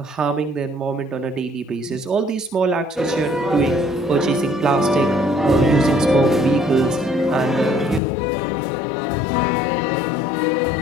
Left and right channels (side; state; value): right; drops out; at 8.0 s